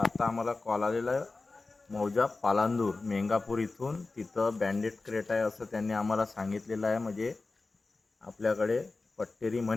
आम्हाला कॉल आलेला आहे मौजा पालांदूर मेंगापूर इथून. तिथं बँडेड क्रेट आहे असं त्यांनी आम्हाला सांगितलेलं आहे. म्हणजे आपल्याकडे पट्टेरी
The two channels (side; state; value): right; quieter; 3.6 dB